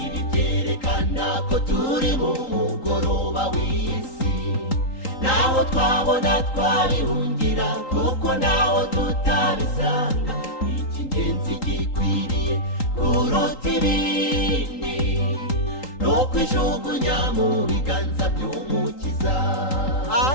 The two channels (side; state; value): right; late; 3.8 ms